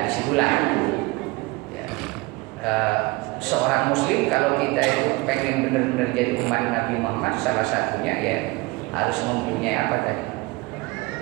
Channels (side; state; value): left; quieter; 23.2 dB